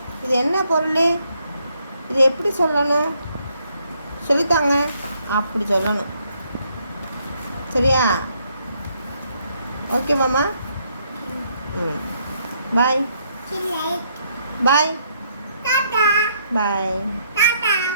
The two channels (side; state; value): both; inverted; correlation -0.72